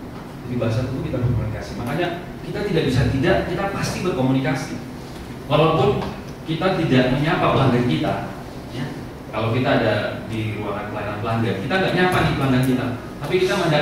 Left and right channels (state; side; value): identical; both; correlation 1.00